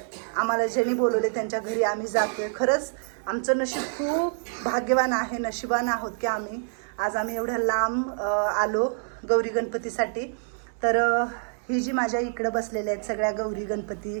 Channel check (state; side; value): silent; left; 60 dB below the other